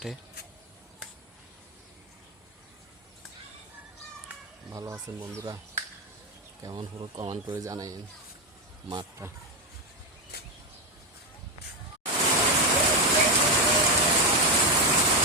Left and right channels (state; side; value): normal; both; correlation 0.10